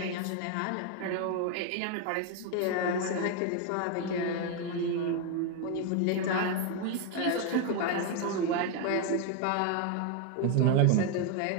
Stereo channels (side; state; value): both; different; correlation 0.01